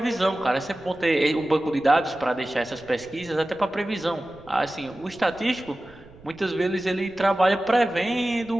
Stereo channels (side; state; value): right; noise; rumble, 23 dB below the sound